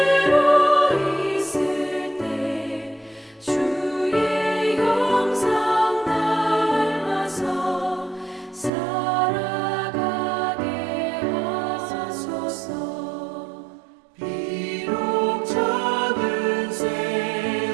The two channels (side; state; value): left; drops out; at 8.7 s